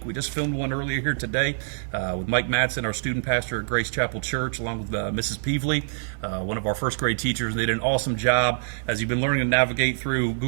We just filmed one earlier here today with Mike Madsen, our student pastor at Grace Chapel Church, along with Mrs. Peevely, one of our first grade teachers. They did an awesome job. As you've been learning to navigate through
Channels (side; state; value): left; silent; 62 dB below the other